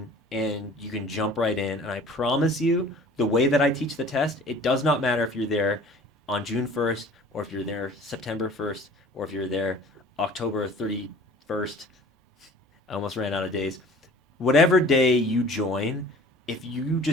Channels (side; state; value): both; normal; correlation 0.47